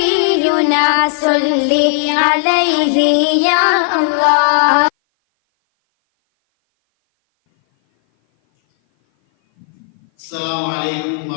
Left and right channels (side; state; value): right; silent; 57 dB below the other